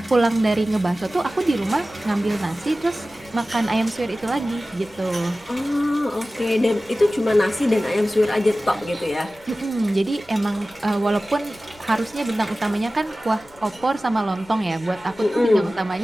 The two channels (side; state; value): left; noise; rumble, 28 dB below the sound